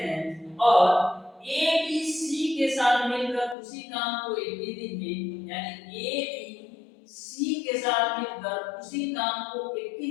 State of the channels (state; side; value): drops out; right; at 3.6 s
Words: और ए बी सी के साथ मिलकर उसी काम को 21 दिन में, यानी ए बी सी के साथ मिलकर उसी काम को